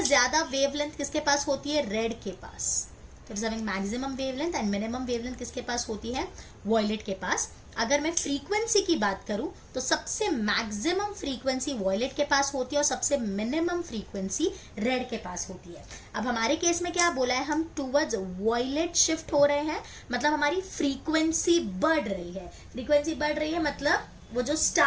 ज्यादा वेवलेंथ किसके पास होती है, रेड के पास। It is having maximum wavelength and minimum wavelength किसके पास होती है, वॉयलेट के पास। अगर मैं फ्रीक्वेंसी की बात करूं तो सबसे मैक्सिमम फ्रीक्वेंसी वॉयलेट के पास होती है और सबसे मिनिमम फ्रीक्वेंसी रेड के पास होती है। अब हमारे केस में क्या बोला है, हम टूवर्ड्स वॉयलेट शिफ्ट हो रहे हैं, मतलब हमारी फ्रीक्वेंसी बढ़ रही है। फ्रीक्वेंसी बढ़ रही है मतलब वो जो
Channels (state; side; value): identical; both; correlation 1.00